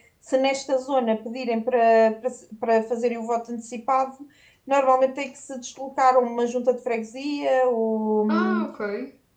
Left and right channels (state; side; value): identical; both; correlation 1.00